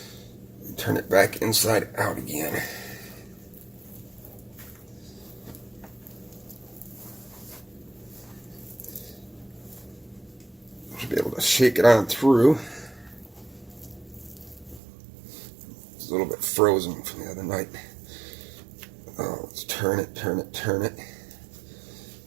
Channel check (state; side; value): drops out; left; at 14.8 s